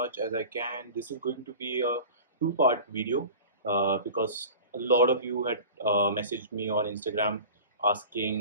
as I can. This is going to be a two-part video because a lot of you had messaged me on Instagram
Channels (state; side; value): inverted; both; correlation -0.37